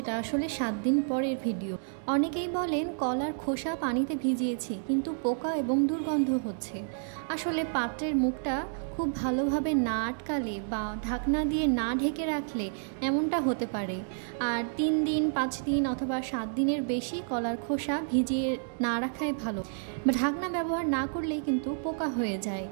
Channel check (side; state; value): left; silent; digital silence